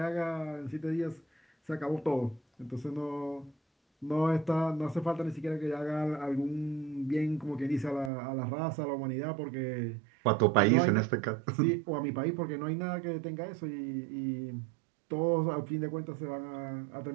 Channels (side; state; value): left; drops out; at 8.1 s